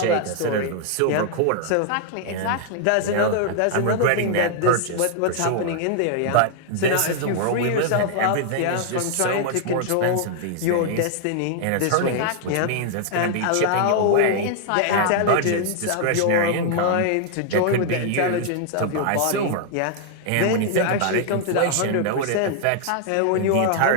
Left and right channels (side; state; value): both; different; correlation 0.00